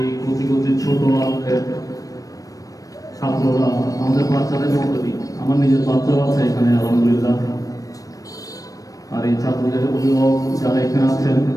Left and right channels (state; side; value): late; right; 0.17 ms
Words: কচি কচি ছোট আমাদের ছাত্ররা, আমাদের বাচ্চাদের মধ্যে, আমার নিজের বাচ্চাও আছে এখানে আলহামদুলিল্লাহ, আর এই ছাত্রদের অভিভাবক যারা এখানে আছেন,